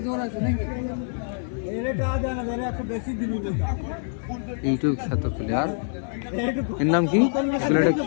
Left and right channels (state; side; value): silent; right; digital silence